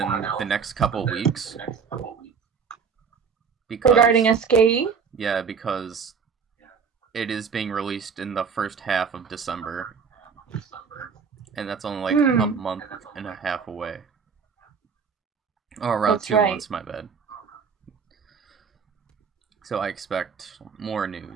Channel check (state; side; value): quieter; left; 6.0 dB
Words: the next couple weeks. Because, regarding SKE? Yeah, because it is being released in the first half of December. And that's only like a month and a half away. Or around that's 2 months, my bad. So I expect more